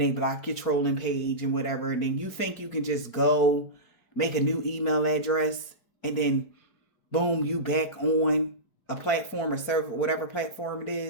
block your trolling page and whatever, and then you think you can just go make a new email address and then boom, you back on a platform or server, whatever platform it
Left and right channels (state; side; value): late; right; 4.3 ms